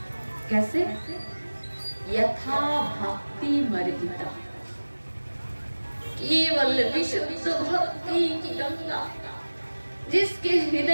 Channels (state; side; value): inverted; both; correlation -1.00